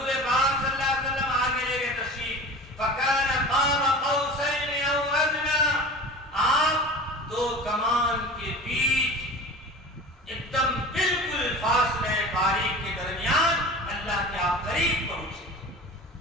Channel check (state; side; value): normal; both; correlation 0.36